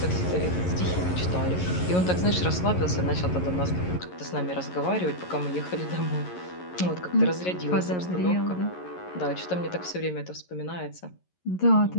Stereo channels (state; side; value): late; right; 11 ms